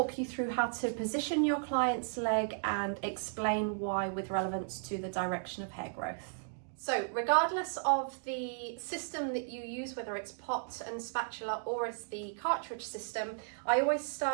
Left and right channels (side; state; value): left; silent; digital silence